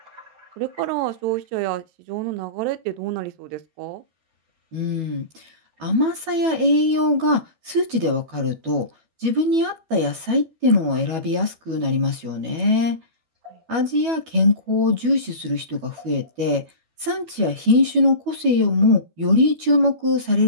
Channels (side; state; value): left; late; 12 ms